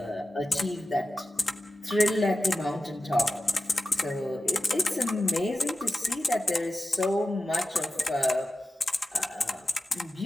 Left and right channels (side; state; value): both; normal; correlation 0.92